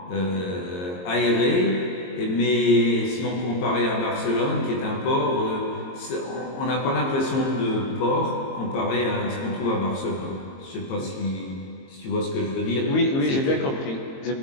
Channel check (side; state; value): right; late; 22 ms